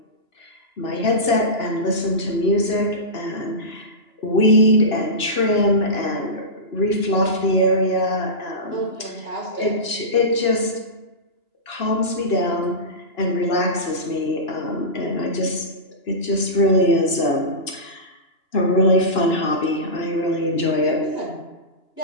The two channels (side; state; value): right; late; 2.9 ms